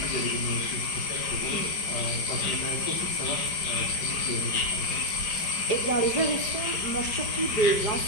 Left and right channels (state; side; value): late; right; 5.0 ms